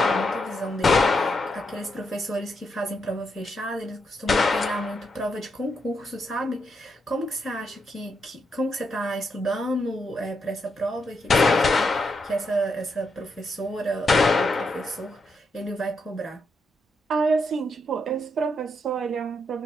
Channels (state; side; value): normal; both; correlation 0.81